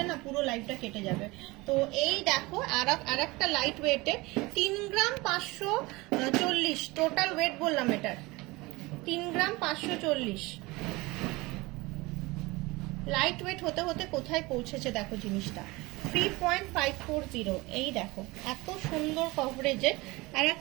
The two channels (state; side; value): quieter; left; 22.5 dB